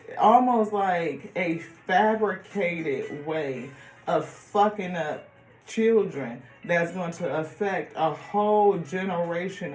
almost like a fabricated way of fucking up children that's going to affect a whole generation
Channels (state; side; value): identical; both; correlation 1.00